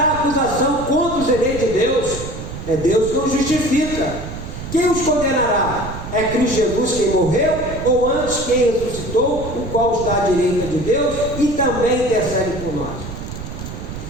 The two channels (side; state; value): right; noise; rumble, 9 dB below the sound